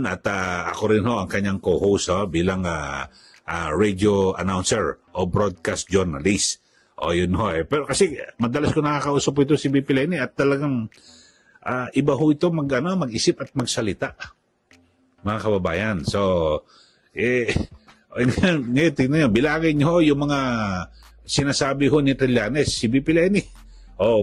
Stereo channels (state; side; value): identical; both; correlation 1.00